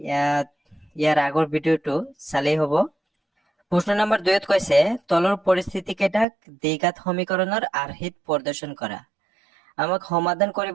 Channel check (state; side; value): drops out; left; at 6.2 s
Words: ইয়াৰ আগৰ ভিডিওটো চালেই হ'ব। প্ৰশ্ন নম্বৰ 2ত কৈছে তলৰ পৰিস্থিতি কেইটাক দ্বিঘাত সমীকৰণৰ আৰ্হিত প্ৰদৰ্শন কৰা। আমাক সমাধান